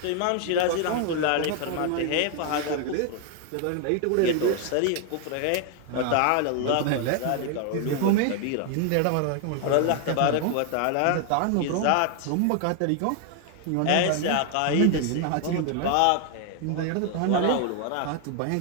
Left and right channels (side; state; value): both; different; correlation 0.00